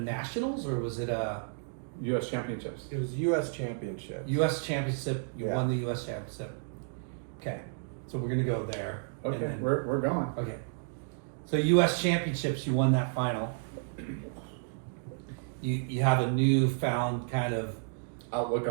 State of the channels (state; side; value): silent; left; digital silence